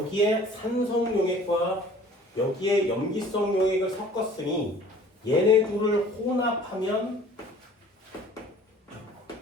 산성용액과 여기에 염기성 용액을 섞었으니 얘네 둘을 혼합하면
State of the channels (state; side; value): normal; both; correlation 0.50